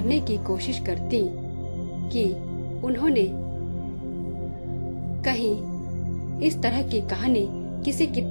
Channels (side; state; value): both; inverted; correlation -1.00